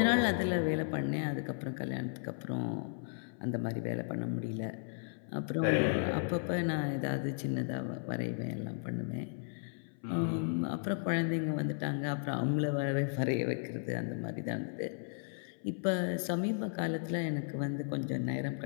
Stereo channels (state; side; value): silent; right; 54 dB below the other